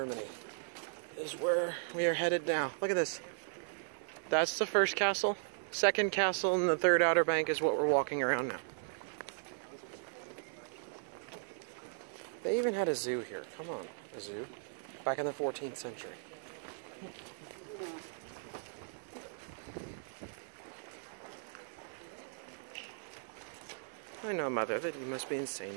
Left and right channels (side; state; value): left; silent; digital silence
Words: is where we are headed now. Look at this. That's the first castle. Second castle and the third Outer Bank is what we're walking around now. They even had a zoo here. Come on, a zoo. Back in the 14th century. I know, Mother, that you must be